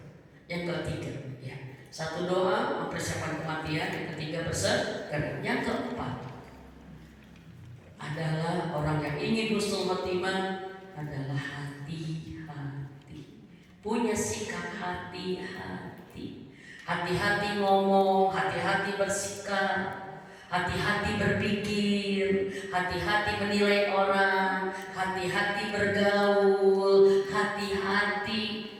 Yang ketiga, ya, satu doa mempersiapkan kematian. Yang ketiga bersedekah. Yang keempat adalah orang yang ingin husnul khotimah adalah hati-hati. Punya sikap hati-hati. Hati-hati ngomong, hati-hati bersikap, hati-hati berpikir, hati-hati menilai orang, hati-hati bergaul, hati-hati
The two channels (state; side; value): identical; both; correlation 1.00